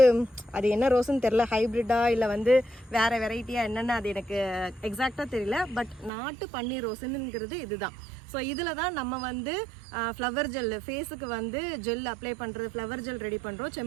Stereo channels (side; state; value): left; drops out; at 6.1 s